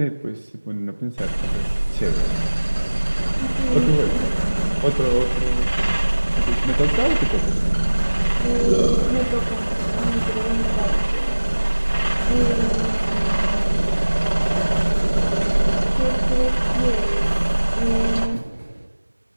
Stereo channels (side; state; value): both; inverted; correlation -1.00